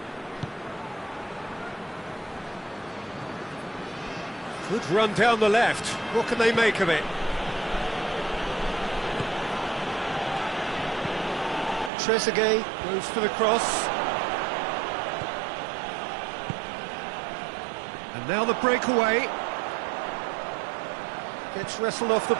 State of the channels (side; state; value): left; drops out; at 11.9 s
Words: Good run down the left. What can they make of it? Trezeguet goes for the cross. And now the breakaway. Gets wrestled off the